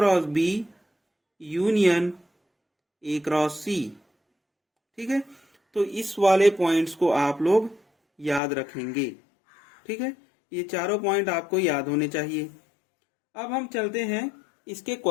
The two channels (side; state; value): right; drops out; at 8.4 s